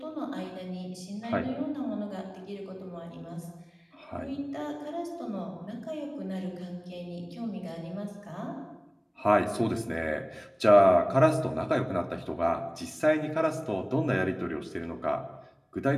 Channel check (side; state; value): both; identical; correlation 1.00